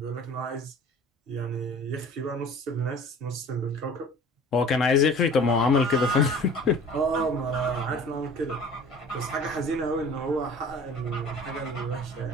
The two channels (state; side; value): normal; both; correlation 0.44